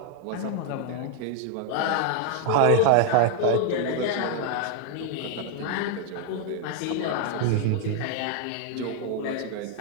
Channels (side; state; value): both; different; correlation 0.00